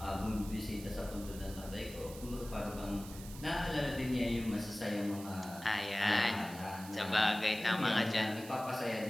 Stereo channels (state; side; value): noise; right; hiss, 15 dB below the sound